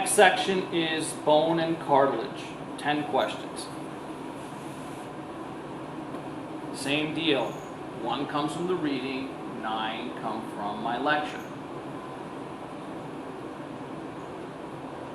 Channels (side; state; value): both; identical; correlation 1.00